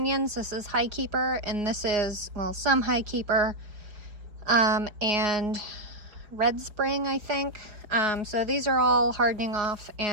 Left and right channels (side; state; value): left; late; 4.8 ms